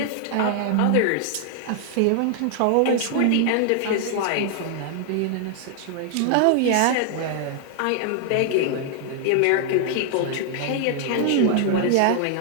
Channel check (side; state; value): both; different; correlation 0.00